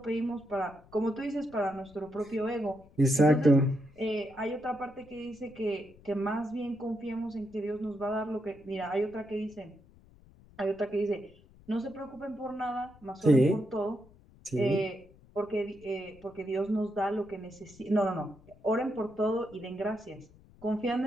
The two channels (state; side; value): noise; left; rumble, 25 dB below the sound